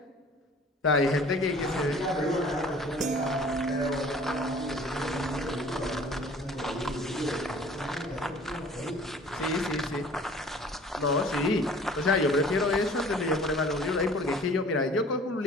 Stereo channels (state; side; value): normal; both; correlation 0.49